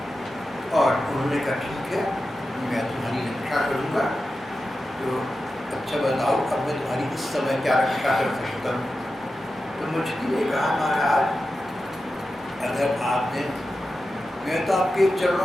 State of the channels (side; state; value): both; normal; correlation 0.92